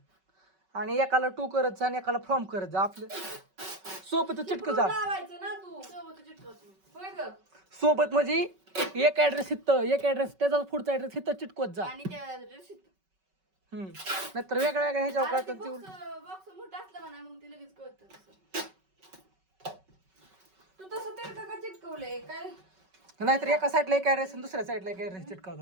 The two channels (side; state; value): left; late; 5.3 ms